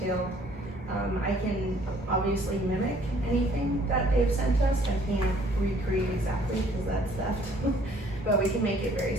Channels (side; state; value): both; normal; correlation 0.59